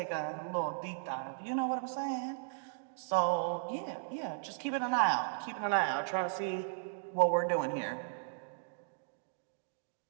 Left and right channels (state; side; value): silent; left; digital silence